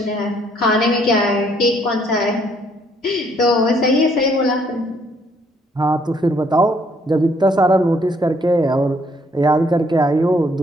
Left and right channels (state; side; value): normal; both; correlation 0.67